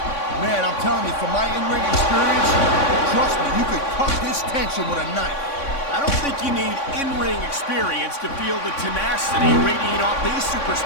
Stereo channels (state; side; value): late; right; 3.6 ms